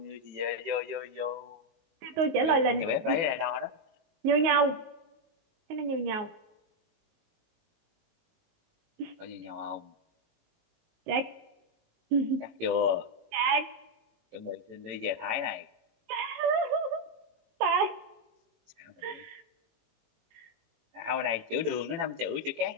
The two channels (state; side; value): late; left; 19 ms